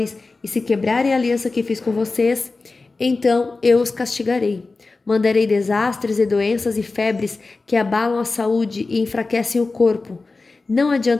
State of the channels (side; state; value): right; quieter; 3.7 dB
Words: e se quebrarem a aliança que fiz com vocês, então eu os castigarei. Mandarei desastres e doenças e febres que abalam a saúde e enfraquecem o corpo. Não